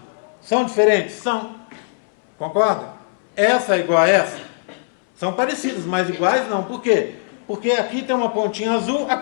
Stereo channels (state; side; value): silent; right; 65 dB below the other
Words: São diferentes? São. Concorda? Essa é igual a essa? São parecidas, mas iguais não. Por quê? Porque aqui tem uma pontinha azul,